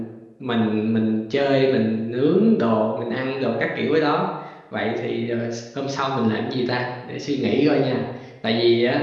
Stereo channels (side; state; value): both; identical; correlation 1.00